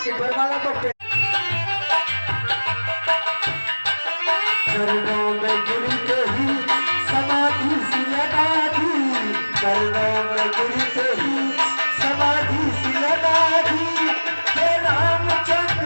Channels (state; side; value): inverted; both; correlation -1.00